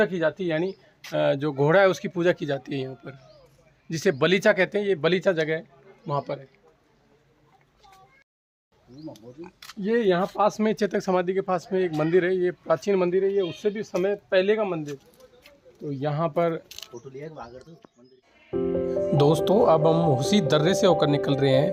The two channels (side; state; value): both; identical; correlation 1.00